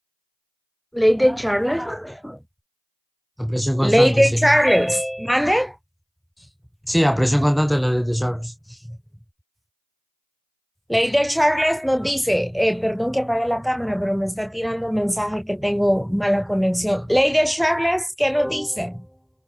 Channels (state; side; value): identical; both; correlation 1.00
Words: Ley de Charles. La presión Ley constante, de sí. Charles. ¿Mande? Sí, a presión constante es la ley de Charles. Ley de Charles nos dice, perdón que apague la cámara, pero me está tirando un mensaje que tengo mala conexión. Ley de Charles, ¿qué nos dice?